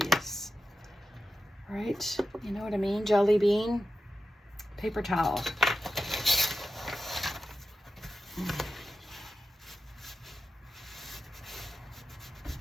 Right? You know what I mean? Jelly bean. Paper towel.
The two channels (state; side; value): normal; both; correlation 0.91